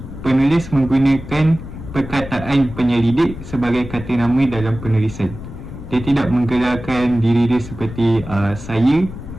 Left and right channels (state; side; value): noise; left; rumble, 12 dB below the sound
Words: penulis menggunakan perkataan penyelidik sebagai kata nama dalam penulisan. Dia tidak menggelarkan diri dia seperti saya